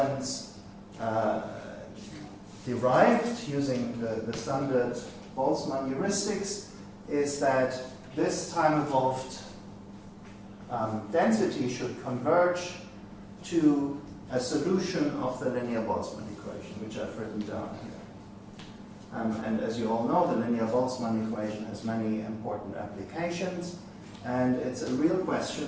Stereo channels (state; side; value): identical; both; correlation 1.00